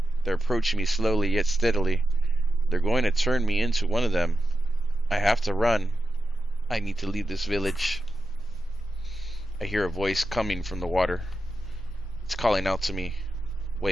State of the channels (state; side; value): normal; both; correlation 0.90